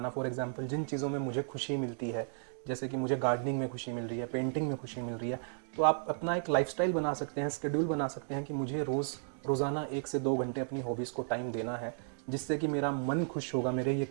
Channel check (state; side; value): silent; left; digital silence